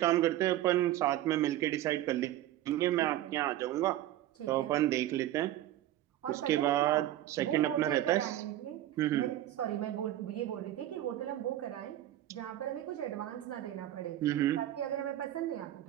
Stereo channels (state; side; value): quieter; left; 13.8 dB